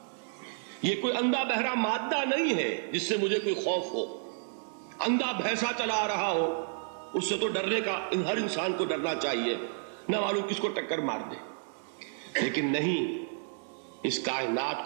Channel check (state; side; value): silent; left; digital silence